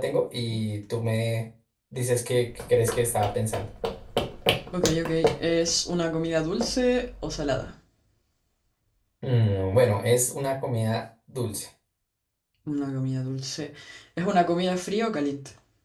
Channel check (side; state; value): both; identical; correlation 1.00